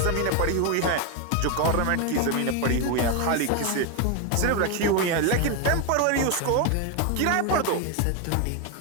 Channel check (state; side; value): different; both; correlation 0.01